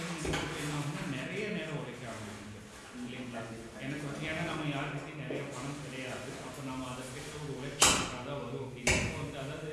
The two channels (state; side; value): identical; both; correlation 1.00